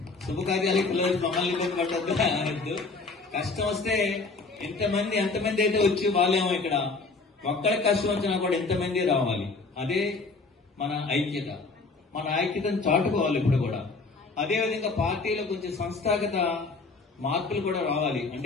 శుభకార్యాలకు పిలవచ్చి మమ్మల్ని ఇబ్బంది పడద్దు అనద్దు. కష్టం వస్తే ఎంతమంది అయితే వచ్చి వాళ్ళేమో ఇక్కడ ఒక్కరికి కష్టం వచ్చినా కూడా ఎంతమంది రావాలి. అదే మన ఐక్యత. మన ఐక్యతను చాటుకోవాలి ఇప్పుడు కూడా. అదేవిధంగా పార్టీలో కొంచెం సంస్థాగత మార్పులు కూడా రావాలి.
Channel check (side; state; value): right; quieter; 4.0 dB